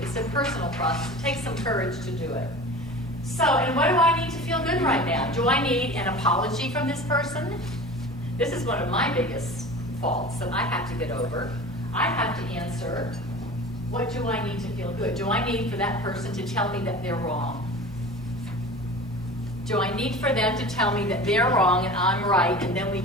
It's a personal process. It takes some courage to do it. So, and what do I need to feel good right now? Do I need an apology from this person? This is one of my biggest faults that I have to get over. I have to answer, what do I need to feel good? Do I need for that person to tell me that they're wrong? Do I need for them to tell me that they're wrong and I'm right, and then we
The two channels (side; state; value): both; normal; correlation 0.36